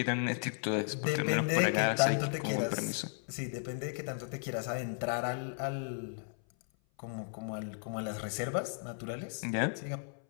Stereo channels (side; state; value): right; silent; 55 dB below the other